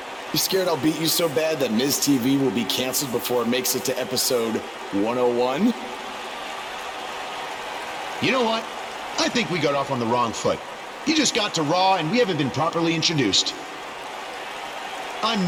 You scared I'll beat you so bad that Miz TV will be canceled before it makes it to episode 101? You know what? I think we got off on the wrong foot. You just got to Raw and we haven't been properly introduced. I'm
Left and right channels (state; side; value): identical; both; correlation 1.00